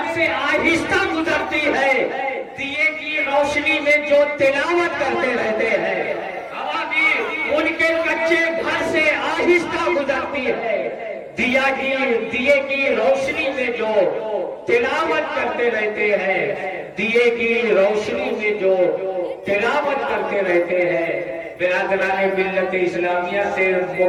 سے آہستہ گزرتی ہے، دیے کی روشنی میں جو تلاوت کرتے رہتے ہیں۔ ہوا بھی ان کے کچے گھر سے آہستہ گزرتی ہے، دیے کی روشنی میں جو تلاوت کرتے رہتے ہیں، دیے کی روشنی میں جو تلاوت کرتے رہتے ہیں۔ برادران ملت اسلامیہ سے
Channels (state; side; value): identical; both; correlation 1.00